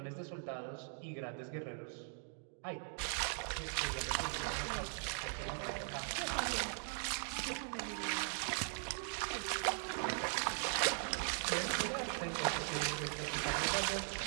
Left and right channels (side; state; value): left; silent; 51 dB below the other